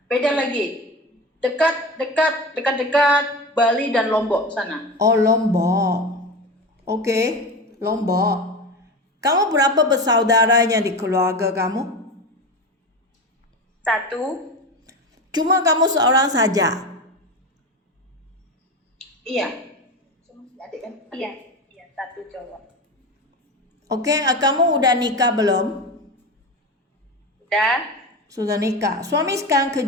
Beda lagi. Dekat Bali dan Lombok sana. Oh, Lombok. Okey, Lombok. Kamu berapa bersaudaranya di keluarga kamu? 1. Cuma kamu seorang saja? Iya. Adik kan? Iya, 1 cowok. Okey, kamu udah nikah belum? Sudah nikah. Suami sekarang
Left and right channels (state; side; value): normal; both; correlation 0.25